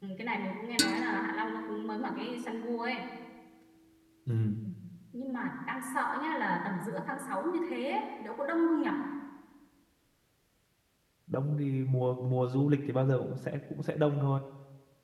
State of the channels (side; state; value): both; identical; correlation 1.00